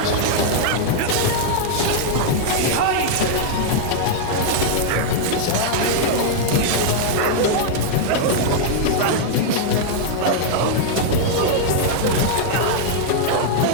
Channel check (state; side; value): different; both; correlation -0.01